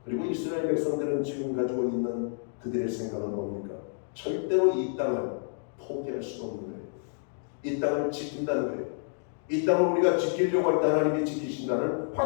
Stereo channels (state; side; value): silent; right; digital silence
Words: 그리고 이스라엘 백성들은 지금 가지고 있는 그들의 생각은 뭡니까? 절대로 이 땅을 포기할 수 없는 거예요. 이 땅을 지킨다는 거예요. 이 땅을 우리가 지키려고 할 때 하나님이 지키신다는